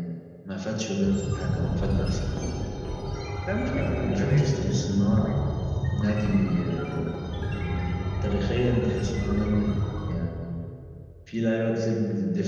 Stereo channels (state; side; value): identical; both; correlation 1.00